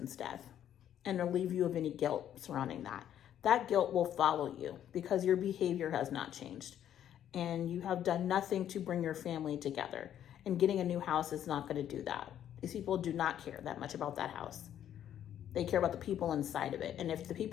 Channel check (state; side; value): quieter; right; 10.5 dB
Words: death and relieve you of any guilt surrounding that. That guilt will follow you because your behavior has not changed and you have done nothing to bring your family together. And getting a new house is not going to do that. These people do not care that much about that house. They care about the people inside of it. And if the